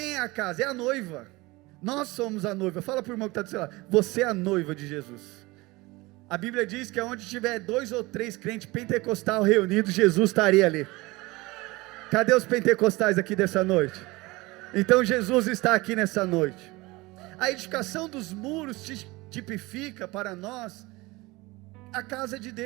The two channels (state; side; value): quieter; left; 22.1 dB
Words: é a casa? É a noiva. Nós somos a noiva. Fala para o irmão que está do seu lado: você é a noiva de Jesus. A Bíblia diz que onde tiver 2 ou 3 crentes pentecostais reunidos, Jesus estaria ali. Cadê os pentecostais aqui dessa noite? Então Jesus está aqui nessa noite. A edificação dos muros tipifica para nós a casa de